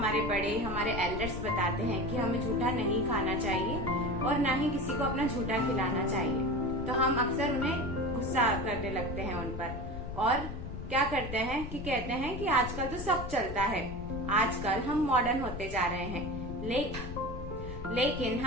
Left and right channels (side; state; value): left; noise; rumble, 8 dB below the sound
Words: बड़े, हमारे एल्डर्स बताते हैं कि हमें झूठा नहीं खाना चाहिए और ना ही किसी को अपना झूठा खिलाना चाहिए, तो हम अक्सर उन्हें गुस्सा करने लगते हैं उन पर और क्या करते हैं कि कहते हैं कि आजकल तो सब चलता है, आजकल हम मॉडर्न होते जा रहे हैं। लेकिन